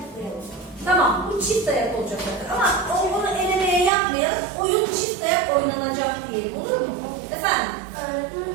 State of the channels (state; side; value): drops out; left; at 3.9 s